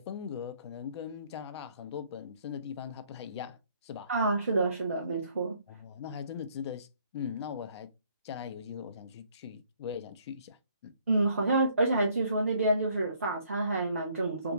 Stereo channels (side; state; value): both; inverted; correlation -0.64